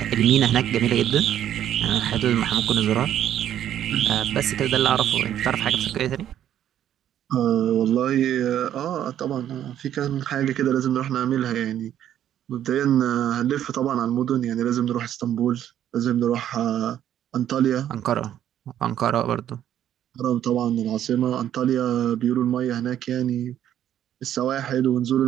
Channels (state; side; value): quieter; left; 10.9 dB